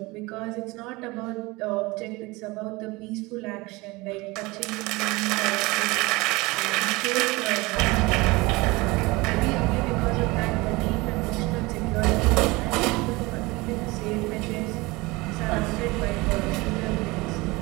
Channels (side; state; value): left; quieter; 23.0 dB